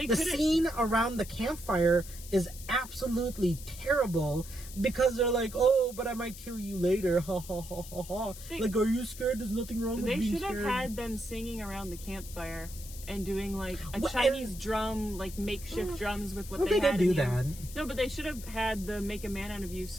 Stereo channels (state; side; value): noise; left; hiss, 15 dB below the sound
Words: scene around the campfire is absolutely terrible because they're like, oh, but I might kill you later. Ha ha ha ha ha. Like, are you scared? There's nothing wrong with being scared. They should have had them singing around the campfire and doing like a Chinese drum, like makeshift drums with what they had. They did do that. that. No, but they should have had the "Make a Man Out of You"